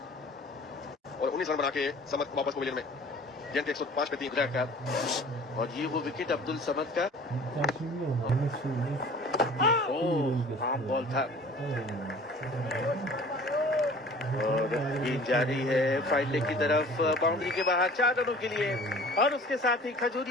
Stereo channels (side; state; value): both; normal; correlation 0.46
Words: और 19 रन बना के समत वापस पवेलियन में, गेंद के 105 पे 3 का, और ये वो विकेट अब्दुल समद का। आम बॉल था, और गेंद जारी है फाइड लेग की तरफ, बाउंड्री के बाहर 4 रनों के लिए, और उसके साथ ही